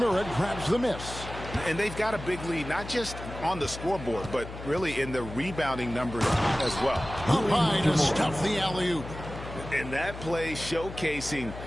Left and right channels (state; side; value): noise; left; hum, 11 dB below the sound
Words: grabs the miss. And they've got a big lead, not just on the scoreboard, but really in the rebounding numbers as well. Up high to stuff the alley-oop. And that play showcasing